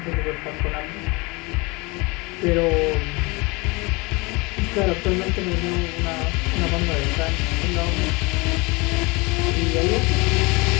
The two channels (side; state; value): right; quieter; 26.1 dB